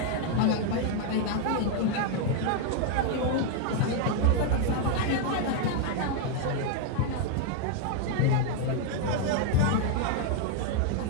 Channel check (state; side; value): different; both; correlation 0.00